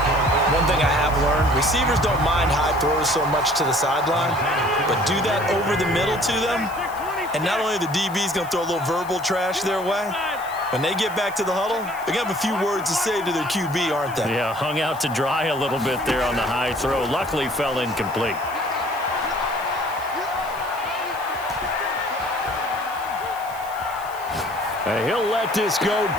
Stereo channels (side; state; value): left; noise; hiss, 19 dB below the sound